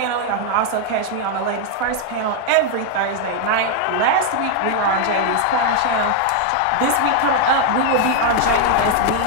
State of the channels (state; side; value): different; both; correlation 0.00